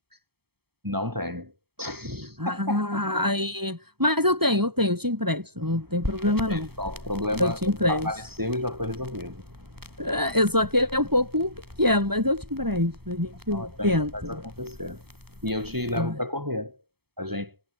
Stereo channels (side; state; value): left; late; 0.96 ms